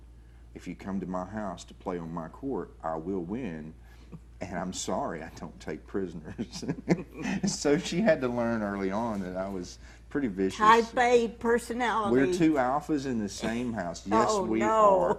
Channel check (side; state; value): both; identical; correlation 1.00